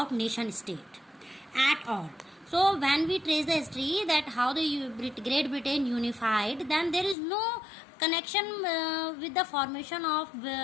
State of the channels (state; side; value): drops out; right; at 7.2 s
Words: nation state at all. So when we trace the history that how the Great Britain unified, then there is no connection with the formation of